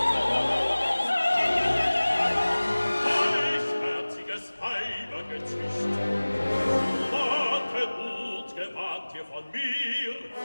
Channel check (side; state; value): both; inverted; correlation -1.00